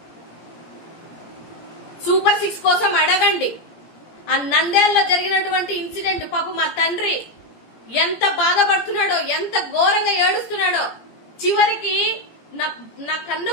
సూపర్ 6 కోసం అడగండి. ఆ నంద్యాలలో జరిగినటువంటి ఇన్సిడెంట్, పాప మా తండ్రి ఎంత బాధపడుతున్నాడో, ఎంత ఘోరంగా ఏడుస్తున్నాడో. చివరికి నా కన్న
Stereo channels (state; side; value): late; right; 17 ms